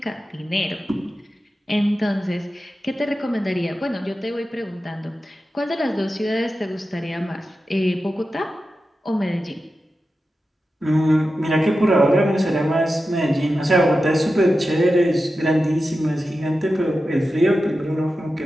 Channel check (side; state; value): both; normal; correlation 0.92